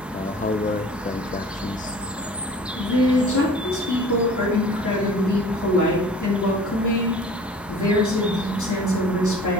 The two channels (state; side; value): normal; both; correlation 0.46